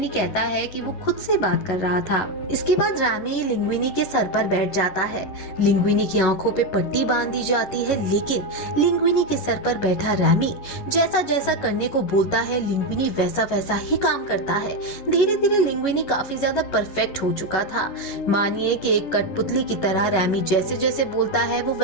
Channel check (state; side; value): late; right; 11 ms